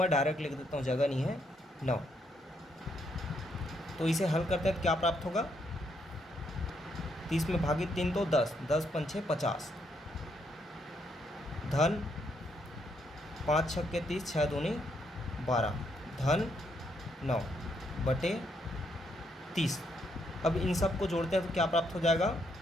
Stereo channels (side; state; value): both; normal; correlation 0.75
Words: डायरेक्ट लिख देता हूँ, जगह नहीं है, 9। तो इसे हल करते हैं तो क्या प्राप्त होगा, 30 में भागित 3 तो 10, 10 पंचे 50, धन 5 छक्के 30, 6 दूनी 12, धन 9 बटे 30। अब इन सब को जोड़ते हैं तो क्या प्राप्त हो जाएगा,